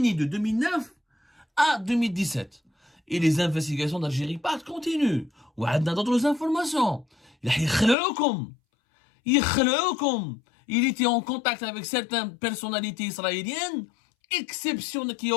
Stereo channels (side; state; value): right; drops out; at 8.0 s